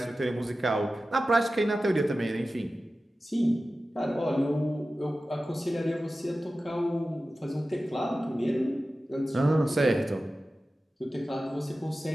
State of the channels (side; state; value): both; normal; correlation 0.95